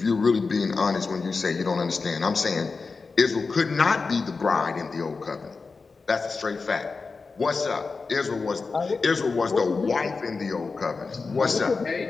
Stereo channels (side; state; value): right; quieter; 4.4 dB